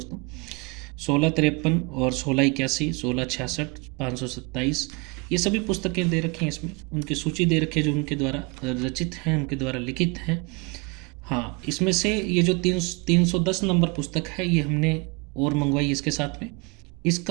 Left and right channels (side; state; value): left; quieter; 29.8 dB